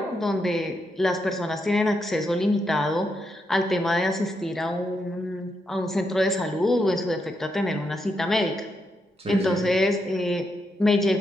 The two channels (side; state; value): both; normal; correlation 0.82